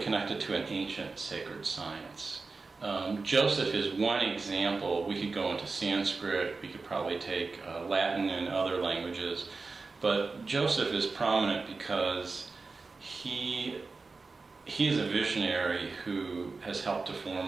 to an ancient sacred science. Joseph is one example. We could go into Sanskrit, we could probably take Latin and other languages, but Joseph is prominent because he is a visionary who has helped to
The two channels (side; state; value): left; quieter; 4.0 dB